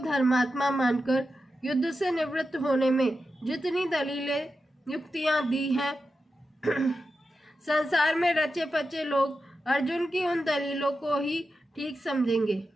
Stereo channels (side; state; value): both; normal; correlation 0.90